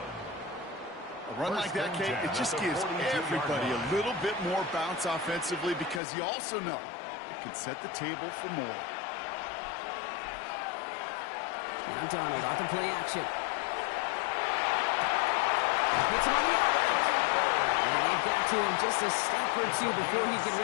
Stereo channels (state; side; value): drops out; right; at 6.0 s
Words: A run like that, Kate, it just gives everybody a little bit more bounce offensively because you also know it can set the table for more. Now Donald off the play action. Hits him on the out route. it to him just a step or two before he can